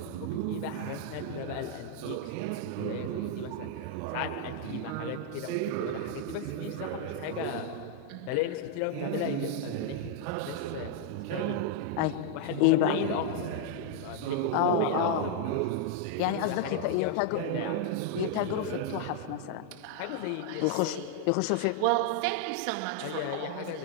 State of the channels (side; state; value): both; different; correlation -0.01